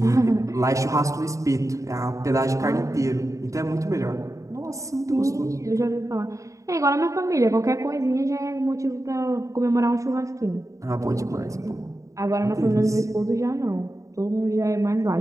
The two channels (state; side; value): late; left; 0.16 ms